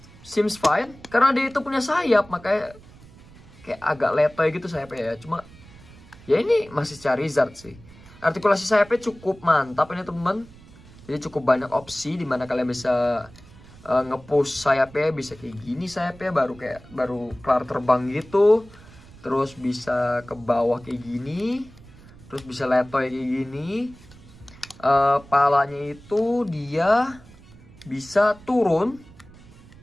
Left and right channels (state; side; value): noise; right; rumble, 22 dB below the sound